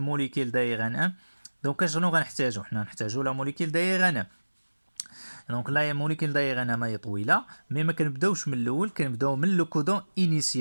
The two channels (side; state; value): both; inverted; correlation -1.00